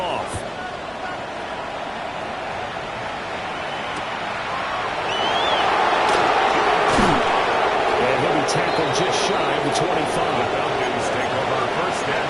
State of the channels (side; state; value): both; identical; correlation 1.00